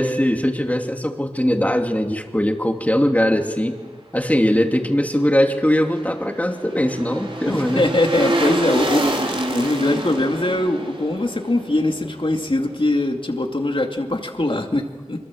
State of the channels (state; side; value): normal; both; correlation 0.87